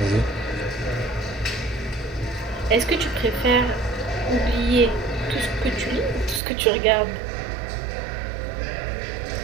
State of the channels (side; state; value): left; drops out; at 6.4 s